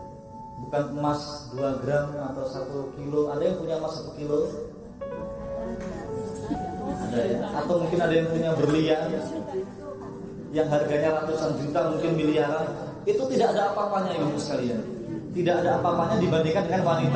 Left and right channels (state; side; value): identical; both; correlation 1.00